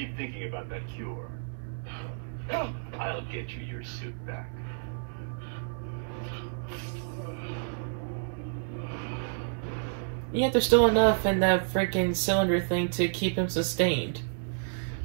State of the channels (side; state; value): left; silent; 58 dB below the other